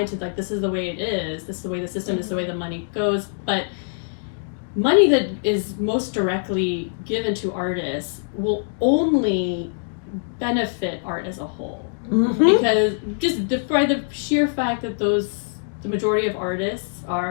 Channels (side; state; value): right; silent; digital silence